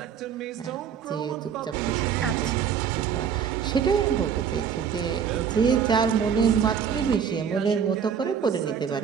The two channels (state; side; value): quieter; left; 7.5 dB